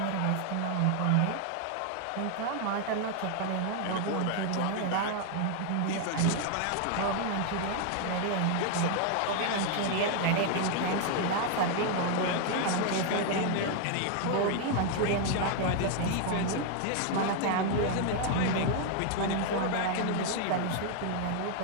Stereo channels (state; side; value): different; both; correlation 0.00